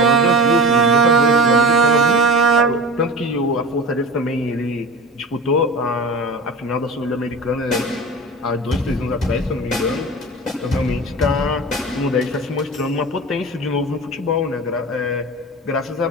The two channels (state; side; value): normal; both; correlation 0.32